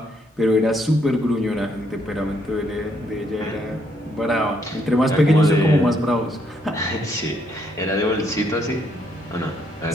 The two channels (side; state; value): both; normal; correlation 0.72